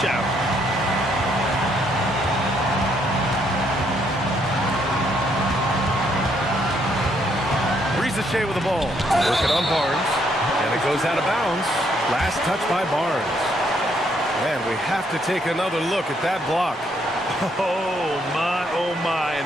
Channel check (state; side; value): normal; both; correlation 0.71